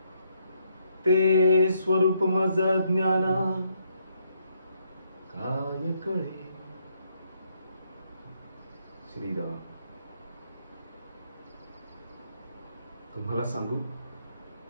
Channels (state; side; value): inverted; both; correlation -0.74